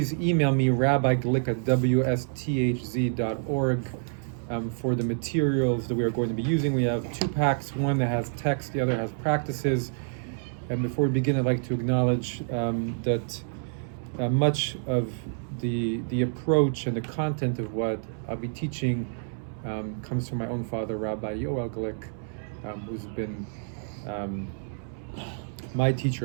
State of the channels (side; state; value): left; silent; 59 dB below the other